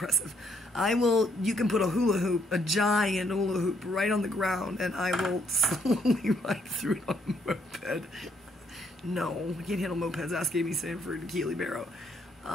I will... You can put a hula hoop, a giant hula hoop, right on the ground, and I will slowly ride through it on a moped. No, I can't handle mopeds. Ask Amy Sanford and Keely Barrow.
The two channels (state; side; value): normal; both; correlation 0.70